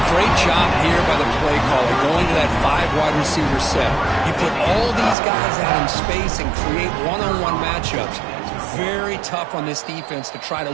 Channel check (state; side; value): drops out; left; at 5.2 s